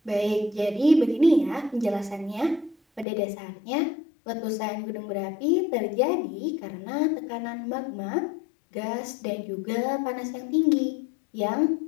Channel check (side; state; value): right; drops out; at 3.1 s